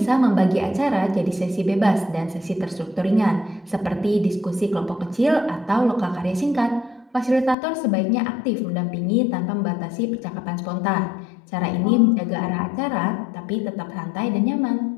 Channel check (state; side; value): drops out; right; at 7.6 s